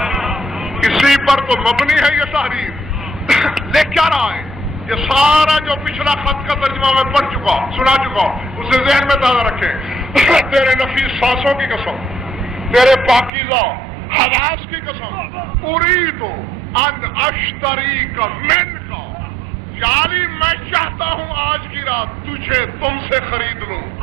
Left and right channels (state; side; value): drops out; left; at 13.3 s